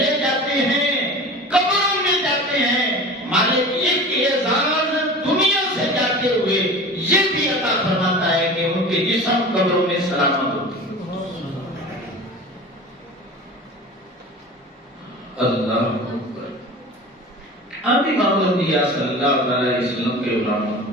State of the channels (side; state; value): both; normal; correlation 0.36